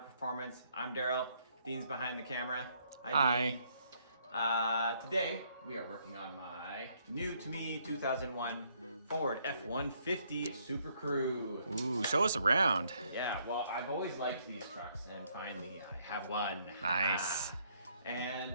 Performance. I'm Daryl. Dean's behind the camera. Hi. Dean. Today we are working on my new to me 2001 Ford F150 Super Crew. Ooh, show us around. Yeah, well, I've always liked these trucks, and finally I have one. Nice.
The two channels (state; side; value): inverted; both; correlation -0.69